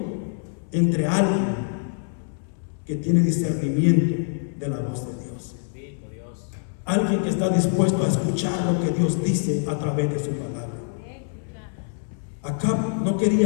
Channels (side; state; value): right; silent; 62 dB below the other